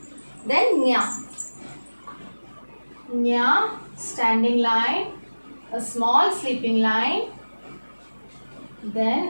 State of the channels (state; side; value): inverted; both; correlation -1.00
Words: Then nya. Nya, standing line. A small sleeping line.